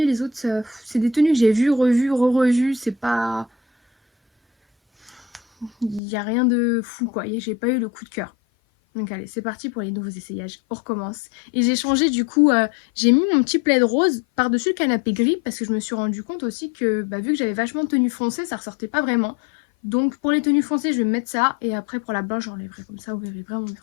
Les autres, c'est des tenues que j'ai vues, revues, re-revues. C'est pas... Il n'y a rien de fou, quoi. J'ai pas eu le coup de cœur. Donc allez, c'est parti pour les nouveaux essayages. On recommence. Et j'ai changé du coup, j'ai mis mon petit plaid rose par-dessus le canapé gris parce que je me suis rendu compte aussi que vu que j'avais vachement de tenues foncées, ça ressortait pas vraiment. Donc pour les tenues foncées, je vais mettre ça et après pour la blanche, j'enlèverai comme ça, vous verrez vraiment,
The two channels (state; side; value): drops out; right; at 6.0 s